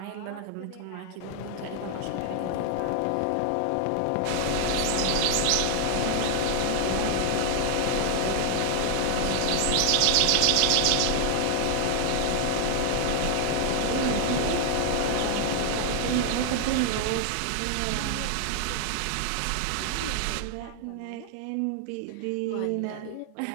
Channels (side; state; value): both; different; correlation 0.00